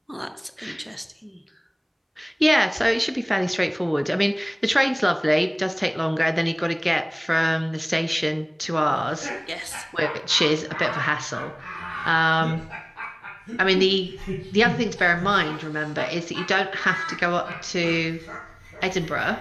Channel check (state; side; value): identical; both; correlation 1.00